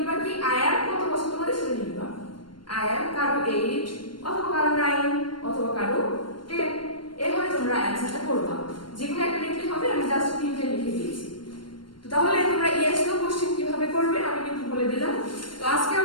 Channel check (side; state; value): right; late; 0.72 ms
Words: কি আই অ্যাম কত বছর তোমাদের সেটা লিখবা। আই অ্যাম কারো 8 অথবা কারো 9 অথবা কারো 10, এভাবে তোমরা অ্যান্সারটা করবা। যেকোনো একটা লিখলে হবে, আমি জাস্ট 3টে লিখে দিয়েছি। তো তাহলে তোমরা ইয়েস নো কোশ্চেন কিভাবে করবে আমি কিন্তু বলে দিলাম। তো আজকে